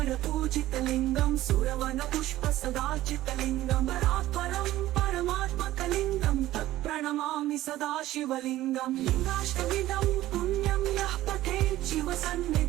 पूजितलिङ्गं सुरवन पुष्प सदाचितलिङ्गं परात्परं परमात्मकलिङ्गं तत्प्रणमामि सदा शिवलिङ्गं लिङ्गाष्टविधं पुण्यं यः पठेत्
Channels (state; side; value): quieter; left; 15.2 dB